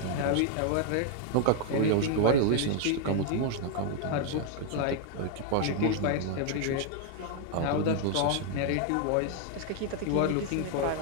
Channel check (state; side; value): different; both; correlation 0.00